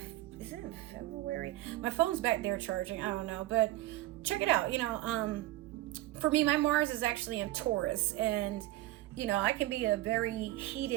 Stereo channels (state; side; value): quieter; left; 16.6 dB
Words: it in February? My phone's back there charging. I don't know, but check it out. For me, my Mars is actually in Taurus, and I can be a very